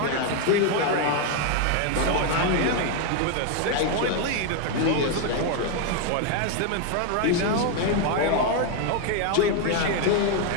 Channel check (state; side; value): different; both; correlation 0.01